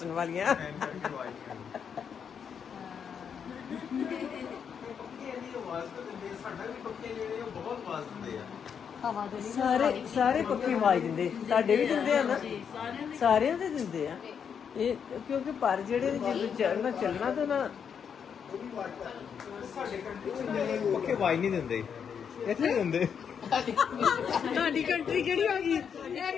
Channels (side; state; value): right; quieter; 7.3 dB